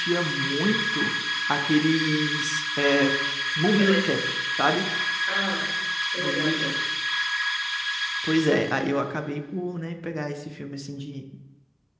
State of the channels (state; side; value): identical; both; correlation 1.00